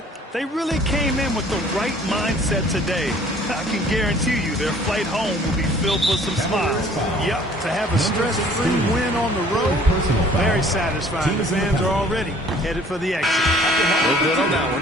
They really came in with the right mindset today. I can guarantee you their flight home will be filled with some smiles. Yep, to have a stress-free win on the road, very satisfying. The fans are already headed for the exit. No good on that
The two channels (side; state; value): both; normal; correlation 0.54